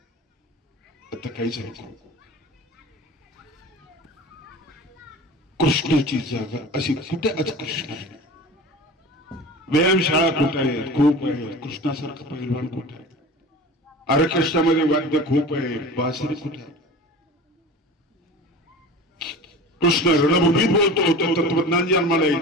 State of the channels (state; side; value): normal; both; correlation 0.36